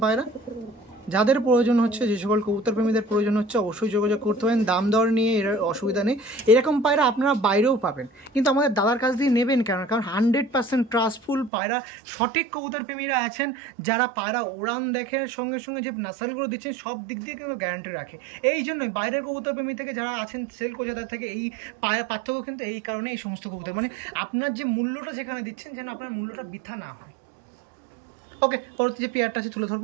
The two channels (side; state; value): left; drops out; at 11.5 s